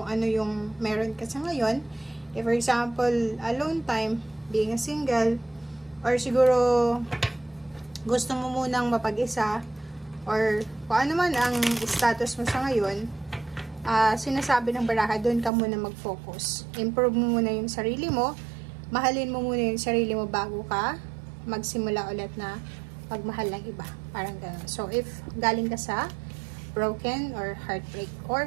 ano yung meron ka sa ngayon. If for example, alone time, being a single, or siguro gusto mo munang mapag-isa, or kung ano man ang status mo sa ngayon, sinasabi ng baraha, doon ka muna mag-focus. Improve mo muna yung sarili mo, mahalin mo muna yung sarili mo bago ka magsimula ulit na pagmahal ng iba. Parang gano'n. So, if galing ka sa broken or heartbreak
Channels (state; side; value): drops out; left; at 15.5 s